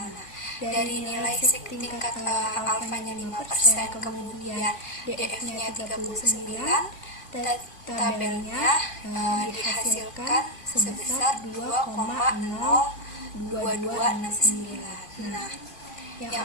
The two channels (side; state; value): right; late; 2.5 ms